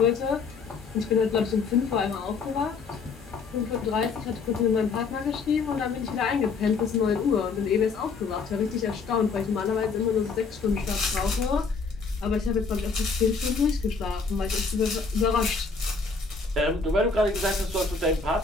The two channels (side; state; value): right; quieter; 4.8 dB